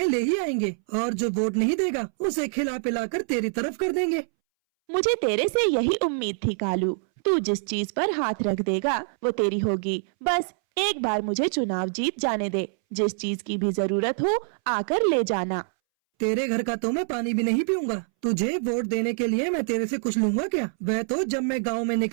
ले ही आएंगे और जो वोट नहीं देगा उसे खिला पिला कर तेरी तरफ कर देंगे। मुझे तेरे से यही उम्मीद थी कालू। तू जिस चीज पर हाथ रख देगा वो तेरी होगी। बस एक बार मुझे चुनाव जीत जाने दे। जिस चीज की भी जरूरत हो आकर ले जाना। तेरे घर का तो मैं पानी भी नहीं पीऊंगा। तुझे वोट देने के लिए मैं तेरे से कुछ लूंगा क्या? वह तो जब मैं गांव में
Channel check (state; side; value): silent; left; 61 dB below the other